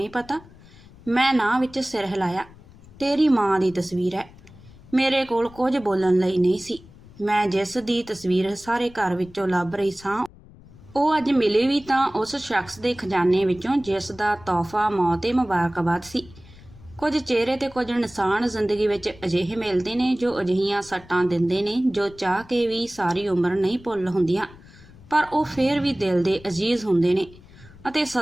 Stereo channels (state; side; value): noise; left; rumble, 22 dB below the sound